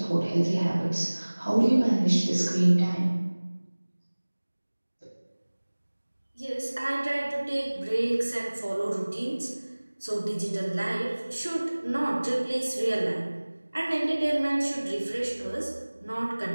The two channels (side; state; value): both; inverted; correlation -1.00